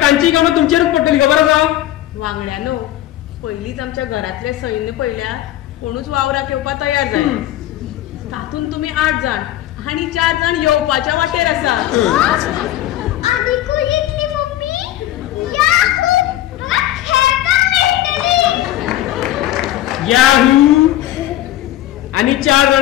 तांची कामां तुमचेरूच पडटली खबर आसा. वांगड्यानो पयलींच आमच्या घरातले सैन्य पळयल्या कोणूच वावराक येवपाक तयार जाय. तातूंत तुमी 8 जाण आनी 4 जाण येवपाच्या वाटेर आसा. याहू आणि 4 जाण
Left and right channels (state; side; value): quieter; right; 14.0 dB